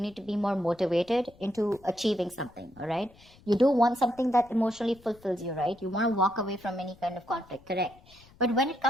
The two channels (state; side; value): noise; left; rumble, 26 dB below the sound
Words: to be more motivated into achieving something, all right? You do want something that emotionally fulfills you, right? You want to walk away from any kind of conflict, correct? But when it